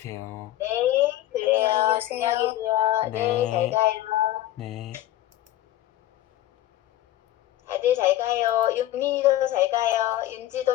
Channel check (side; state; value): right; quieter; 14.1 dB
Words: 네, 그래요. 안녕히 계세요. 안녕히 계세요. 네, 잘 네. 가요. 네. 다들 잘 가요. 윤민이도 잘 가요.